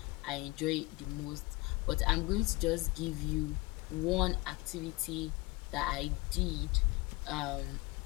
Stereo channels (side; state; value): right; quieter; 22.8 dB